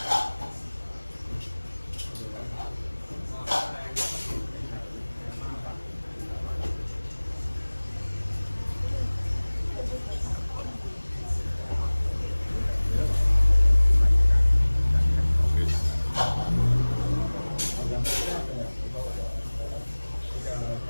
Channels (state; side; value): inverted; both; correlation -1.00